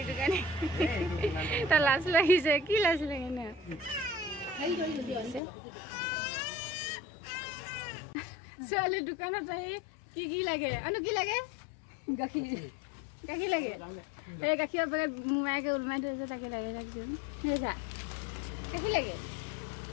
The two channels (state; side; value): drops out; right; at 5.4 s